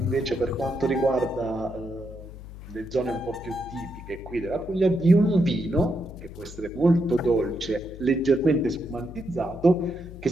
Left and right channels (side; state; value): left; noise; hum, 14 dB below the sound